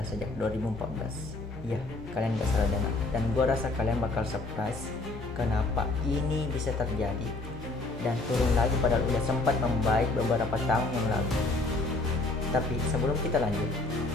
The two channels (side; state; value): right; quieter; 3.1 dB